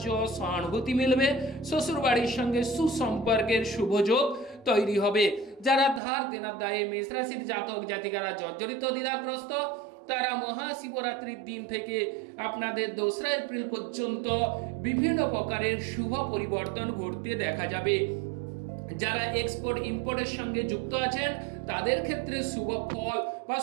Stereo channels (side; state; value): left; drops out; at 6.0 s